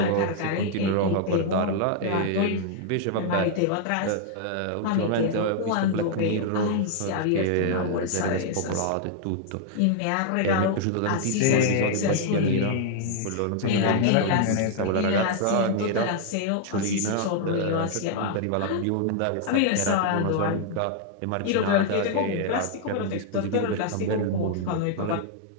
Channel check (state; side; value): different; both; correlation -0.01